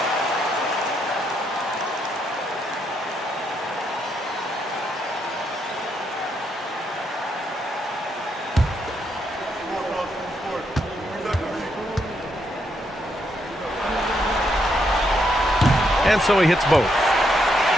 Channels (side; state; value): both; normal; correlation 0.77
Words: And so he hits both.